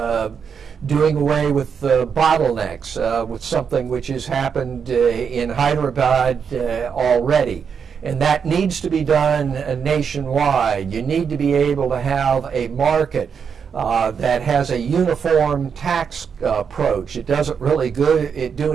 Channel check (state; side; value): quieter; left; 6.6 dB